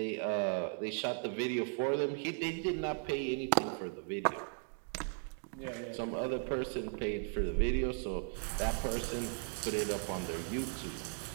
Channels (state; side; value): silent; left; 53 dB below the other